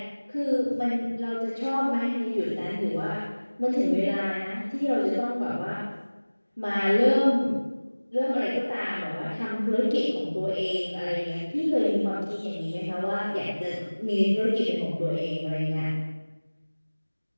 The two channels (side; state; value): both; inverted; correlation -1.00